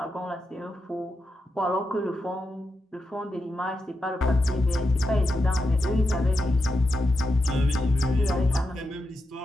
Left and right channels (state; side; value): normal; both; correlation 0.87